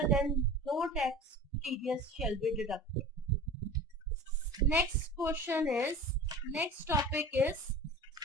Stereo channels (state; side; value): normal; both; correlation 0.38